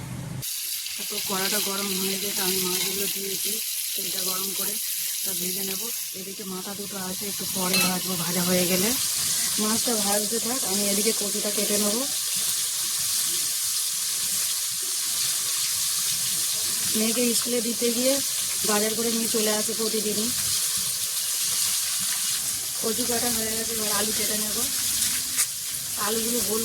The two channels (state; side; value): identical; both; correlation 1.00